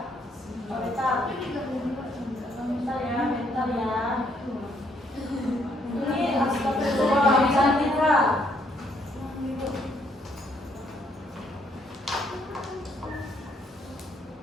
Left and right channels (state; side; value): normal; both; correlation 0.70